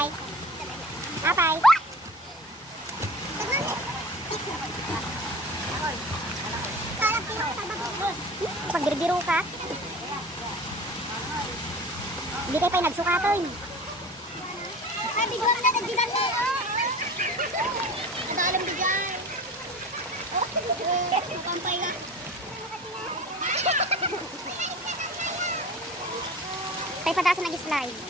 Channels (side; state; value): both; normal; correlation 0.38